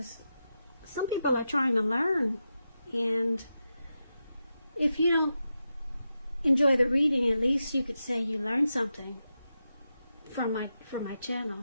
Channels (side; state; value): both; inverted; correlation -0.88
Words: some people are trying to learn. And if you don't enjoy the reading, at least you could say you learned something from my